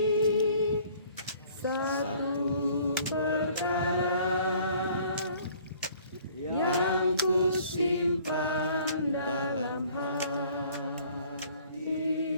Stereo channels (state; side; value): inverted; both; correlation -0.55